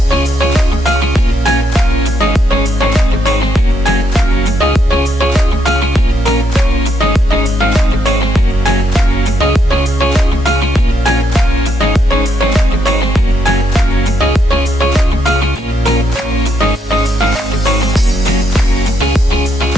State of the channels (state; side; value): normal; both; correlation 0.77